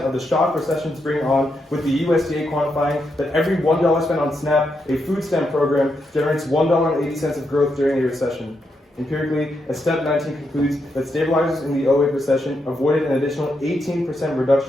of the shock recessions bring on, with the USDA quantifying that every $1 spent on SNAP, a food stamp program, generates $1.80 of growth during a recession. Empirically, a Step 19 concludes that stabilizers in the 2008 recession avoided an additional 18%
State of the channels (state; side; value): normal; both; correlation 0.82